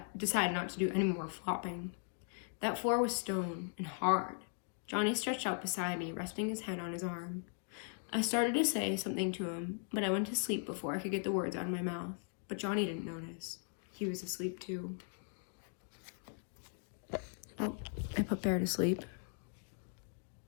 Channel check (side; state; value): right; silent; 52 dB below the other